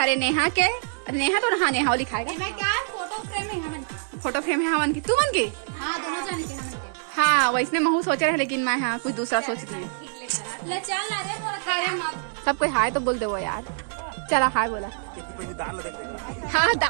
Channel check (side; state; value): left; silent; digital silence